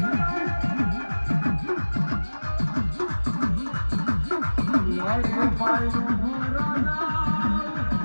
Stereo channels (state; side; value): inverted; both; correlation -1.00